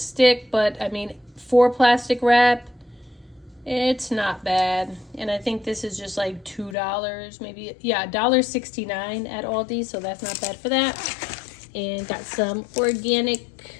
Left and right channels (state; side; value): drops out; right; at 6.8 s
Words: but I mean, for plastic wrap, it's not bad. And I think this is just like $2, maybe. Yeah, $1.69 at Aldi, so that's not bad for that. And got some organic